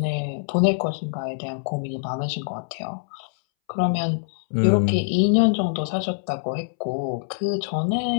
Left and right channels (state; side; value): silent; right; 62 dB below the other